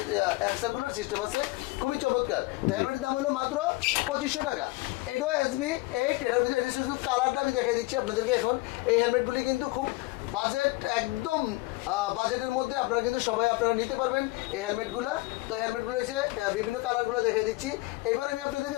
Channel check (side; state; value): right; quieter; 21.5 dB